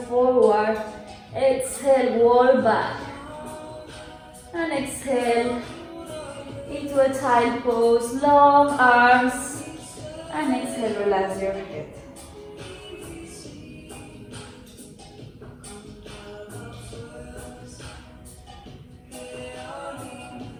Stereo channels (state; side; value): identical; both; correlation 1.00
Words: forward. Exhale, wall back. And exhale into a child pose, long arms. And exhale, relax your head.